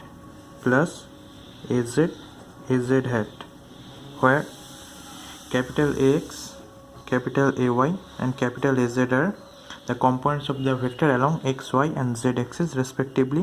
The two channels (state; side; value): identical; both; correlation 1.00